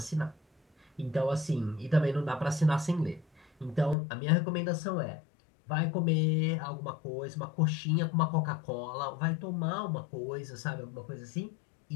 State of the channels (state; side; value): drops out; right; at 4.0 s